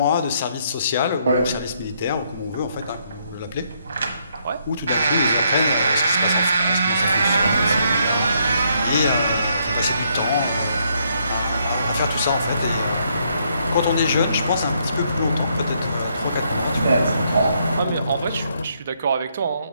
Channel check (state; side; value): inverted; both; correlation -0.73